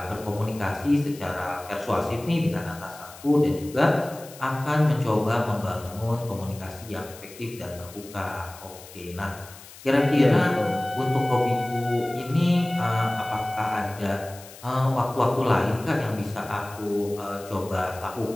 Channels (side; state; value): left; noise; hiss, 18 dB below the sound